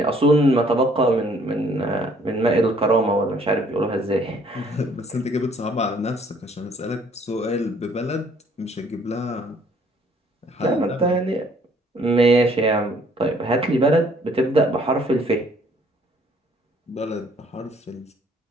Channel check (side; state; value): both; normal; correlation 0.61